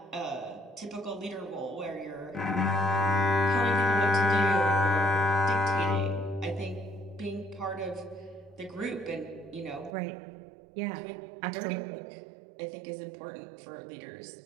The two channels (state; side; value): drops out; left; at 10.0 s